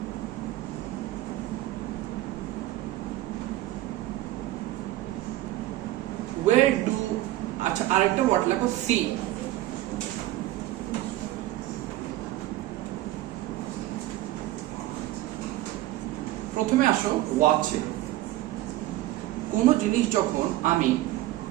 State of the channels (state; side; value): quieter; left; 15.9 dB